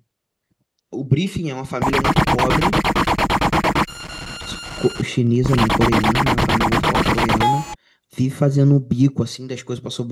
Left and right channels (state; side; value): identical; both; correlation 1.00